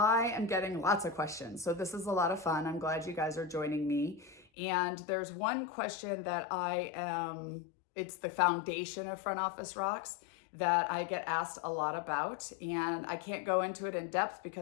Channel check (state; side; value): drops out; right; at 4.5 s